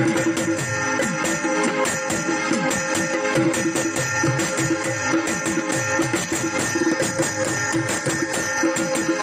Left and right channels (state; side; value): identical; both; correlation 1.00